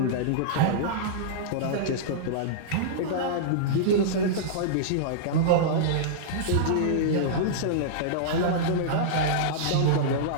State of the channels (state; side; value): different; both; correlation -0.03